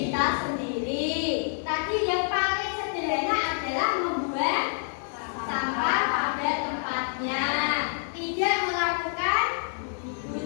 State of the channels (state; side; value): silent; right; 60 dB below the other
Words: kita sendiri. Tadi yang paling sederhana adalah membuang sampah pada tempatnya, tidak melakukan